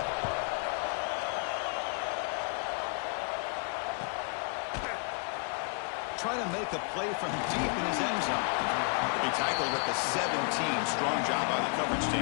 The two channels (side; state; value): right; quieter; 37.7 dB